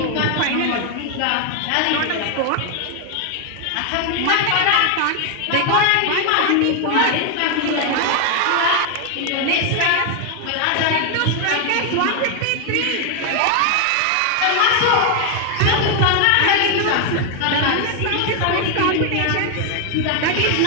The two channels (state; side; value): different; both; correlation 0.01